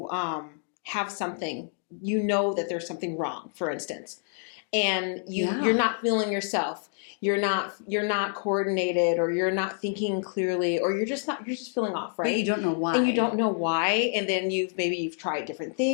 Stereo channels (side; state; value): right; silent; 60 dB below the other